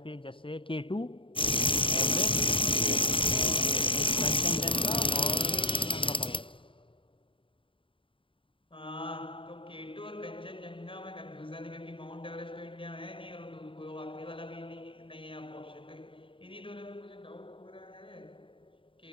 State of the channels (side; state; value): right; late; 0.25 ms